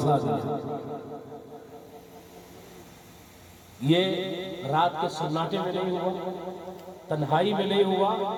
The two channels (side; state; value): both; identical; correlation 1.00